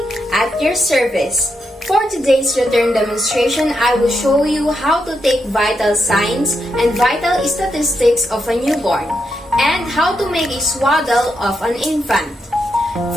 at your service. For today's return demonstration, I will show you how to take vital signs and vital statistics of a newborn and how to make a swaddle of an infant.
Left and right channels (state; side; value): normal; both; correlation 0.83